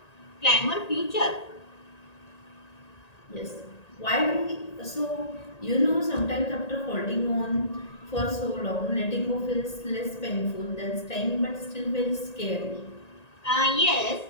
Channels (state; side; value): late; right; 1.8 ms